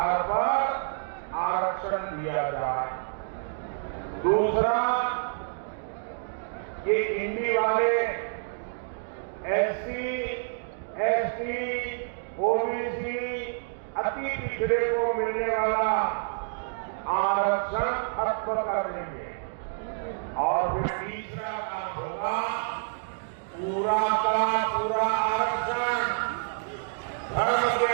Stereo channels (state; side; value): silent; left; digital silence